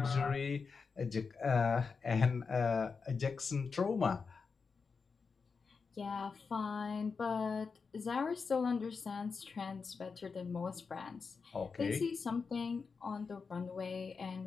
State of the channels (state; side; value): quieter; right; 5.1 dB